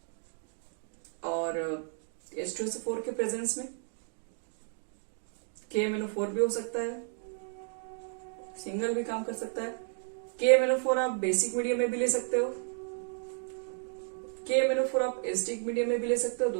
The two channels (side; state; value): left; silent; 56 dB below the other